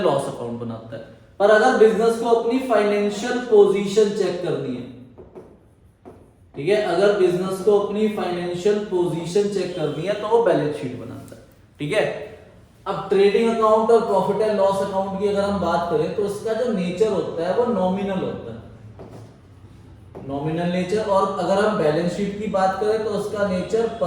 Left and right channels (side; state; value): both; identical; correlation 1.00